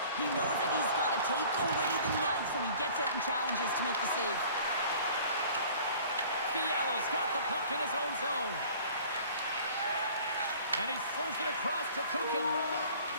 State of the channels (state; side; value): inverted; both; correlation -0.48